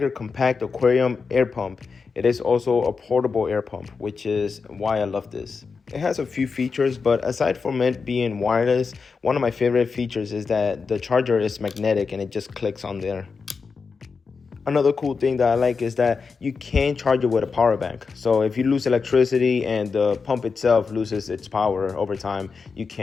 Compact Aquarium air pump. It is also a portable air pump, which is why I love this. It has a few features, but aside from it being wireless, one of my favorite features is that the charger is magnetic and it just clicks on there. Another cool thing that I like is that you can charge it with a power bank. So if you lose electricity and the pump itself loses its power over time, you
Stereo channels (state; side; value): quieter; right; 5.0 dB